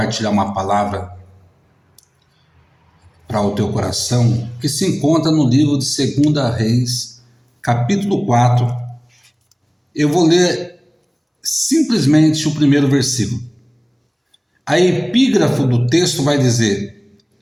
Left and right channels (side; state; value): both; identical; correlation 1.00